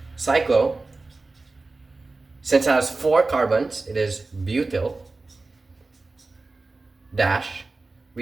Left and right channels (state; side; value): quieter; left; 3.5 dB